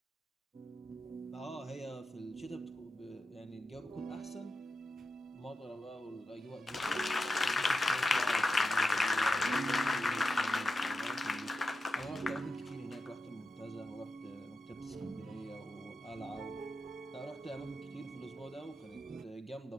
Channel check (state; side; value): normal; both; correlation 0.89